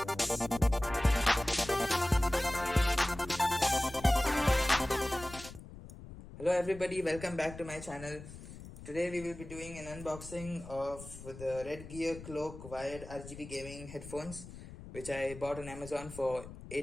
everybody, welcome back to my channel. Today we will be doing an unboxing of the Redgear Cloak wired RGB gaming headphones, which I bought on Amazon for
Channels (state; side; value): noise; left; rumble, 14 dB below the sound